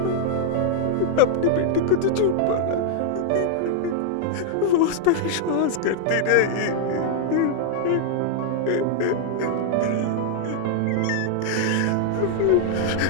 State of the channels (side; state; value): both; different; correlation -0.01